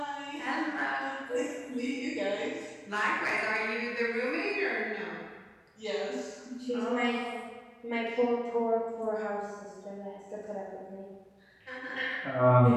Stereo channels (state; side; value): identical; both; correlation 1.00